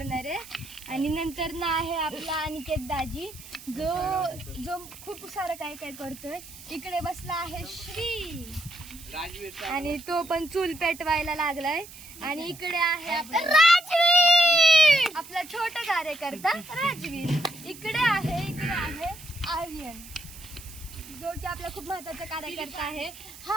आहे. आणि नंतर ना आहे आपला अनिकेत दाजी, जो खूप सारं काय काय करतोय. इकडे बसला आहे श्री आणि तो पण चूल पेटवायला लागलाय. आणि इकडे आहे आपला राजवीर, आपला छोटा कार्यकर्ता राजवीर. इकडे आहे आर्यन, जो की आपला खूप महत्वाचा कार्यकर्ता आहे. हा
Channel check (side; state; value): right; noise; hiss, 17 dB below the sound